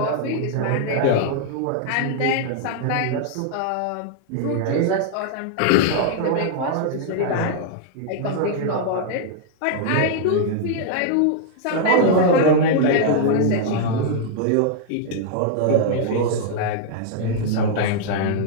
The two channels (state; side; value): different; both; correlation -0.01